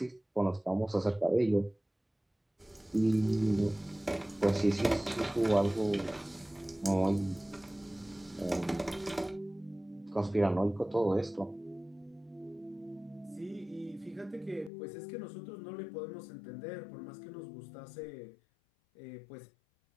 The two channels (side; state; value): right; drops out; at 14.7 s